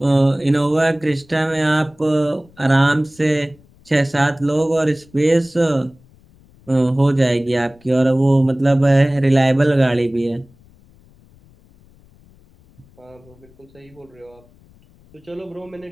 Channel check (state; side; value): noise; left; rumble, 29 dB below the sound